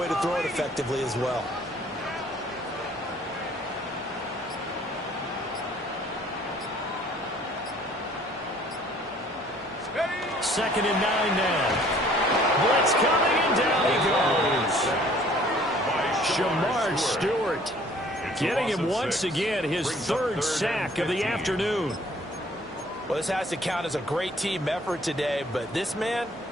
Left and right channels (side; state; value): both; normal; correlation 0.56